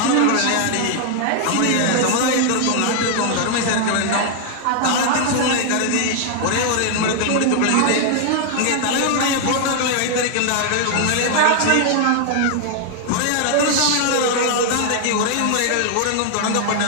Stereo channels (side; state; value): both; different; correlation 0.00